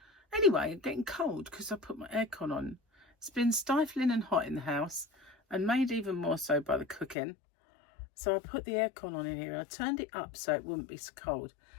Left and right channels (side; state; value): right; drops out; at 7.2 s